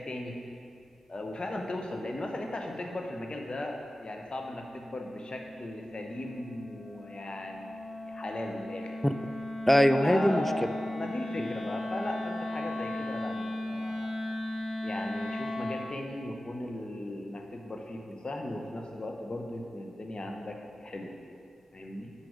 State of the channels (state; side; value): normal; both; correlation 0.95